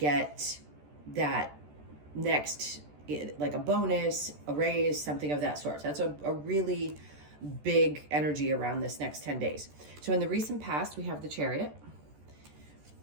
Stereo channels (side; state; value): left; late; 14 ms